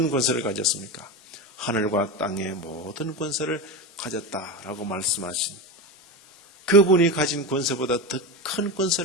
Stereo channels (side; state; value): both; normal; correlation 0.20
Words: 권세를 가졌습니까? 하늘과 땅의 모든 권세를 가졌다라고 말씀하신 그분이 가진 권세보다 더 큰